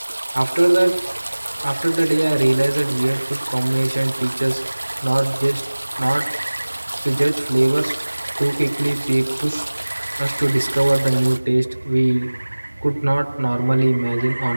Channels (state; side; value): inverted; both; correlation -1.00